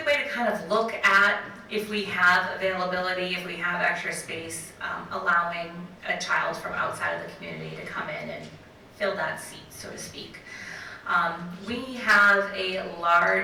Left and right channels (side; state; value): both; identical; correlation 1.00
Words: way to kind of look at if we have availability, if we have extra space, allowing a child from outside of the community to come in and fill that seat, so to speak. We have a